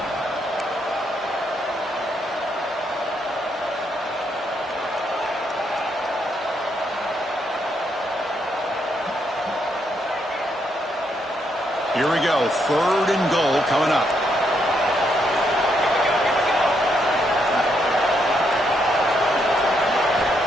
Here we go. 3rd and goal coming up.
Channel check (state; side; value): normal; both; correlation 0.76